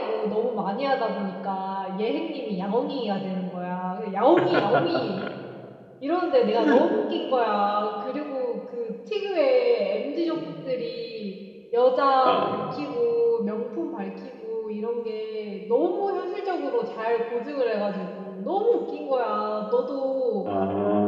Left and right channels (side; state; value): both; identical; correlation 1.00